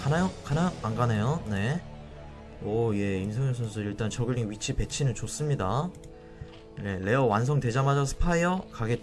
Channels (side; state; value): both; identical; correlation 1.00